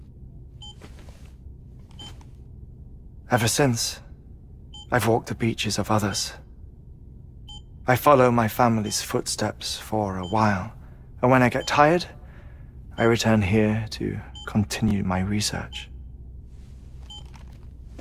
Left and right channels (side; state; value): both; identical; correlation 1.00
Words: Ever since, I've walked the beaches of others, I follow my family's footsteps for a while, and when I get tired, I return here to continue my research.